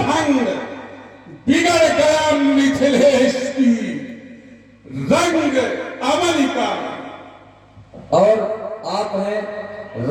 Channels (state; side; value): identical; both; correlation 1.00